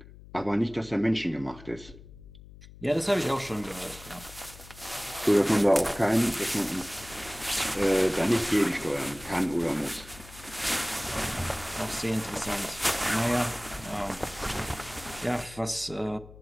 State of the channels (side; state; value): left; noise; hum, 18 dB below the sound